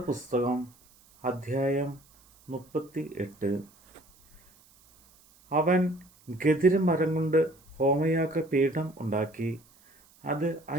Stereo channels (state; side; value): noise; right; hiss, 29 dB below the sound